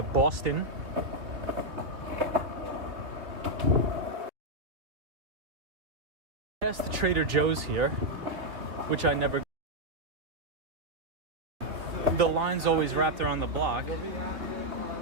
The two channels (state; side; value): late; left; 3.0 ms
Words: Boston. Past the Trader Joe's here, which I never. The line's always wrapped around the block.